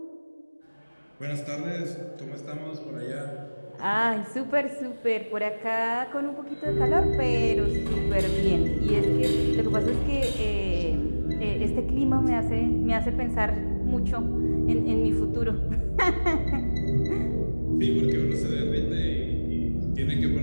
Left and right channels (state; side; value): inverted; both; correlation -1.00